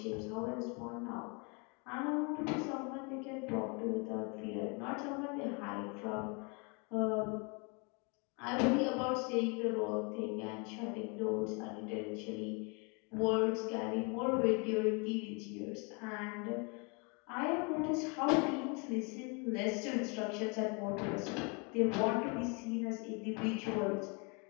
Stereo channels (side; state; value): right; quieter; 32.8 dB